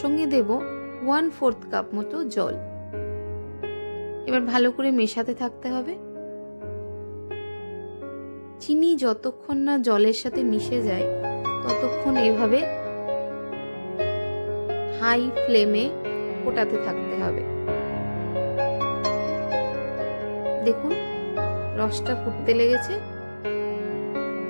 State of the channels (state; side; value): inverted; both; correlation -1.00